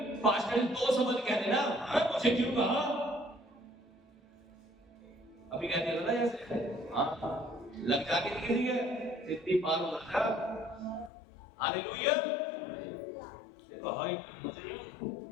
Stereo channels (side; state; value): right; drops out; at 11.1 s